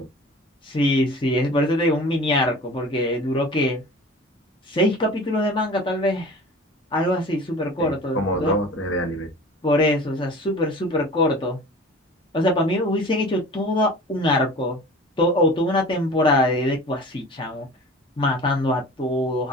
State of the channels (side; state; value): both; normal; correlation 0.41